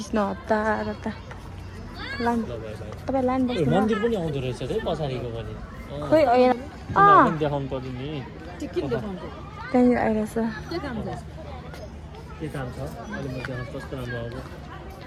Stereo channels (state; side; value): identical; both; correlation 1.00